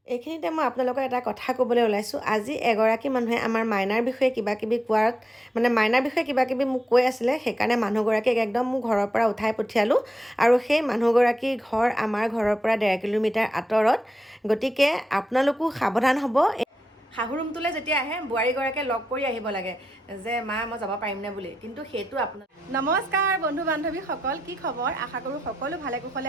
এইখিনিতে মই আপোনালোকৰ এটা কথা ক'বলৈ ওলাইছোঁ। আজি এগৰাকী মানুহে আমাৰ মাইনাৰ বিষয়ে কিবা কিবি কোৱাত মাইনাৰ বিষয়ে কিবা কিবি মোক কৈ আছিলে, সেইকাৰণে মানুহগৰাকীক একদম মোৰ ঘৰৰ পৰা উঠাই পঠিয়ালোঁ। আৰু সেই মানুহগৰাকীৰ ঘৰ আমাৰ ঘৰৰ পৰা 1.5 কিলোমিটাৰ আঁতৰত। গতিকে আপোনালোকো সাৱধান হ'ব। শাহু ৰুমটোলৈ যেতিয়া আহে বোৱাৰীগৰাকীয়ে লগ কৰি আহিব লাগে যে মা মই যাব পাৰিমনে বুলি, কিন্তু সেইটো আপোনাৰ। নমস্কাৰ বন্ধু বান্ধৱীসকল, কি খবৰ? আশা কৰোঁ সকলো ভালে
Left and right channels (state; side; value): normal; both; correlation 0.87